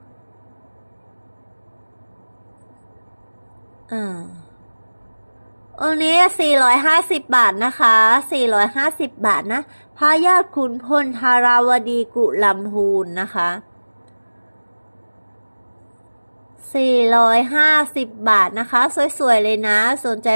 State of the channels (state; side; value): inverted; both; correlation -1.00